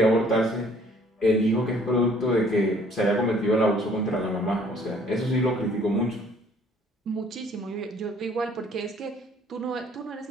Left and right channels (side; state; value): both; normal; correlation 0.58